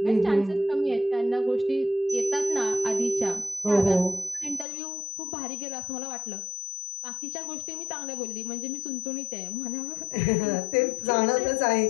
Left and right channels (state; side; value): drops out; right; at 4.7 s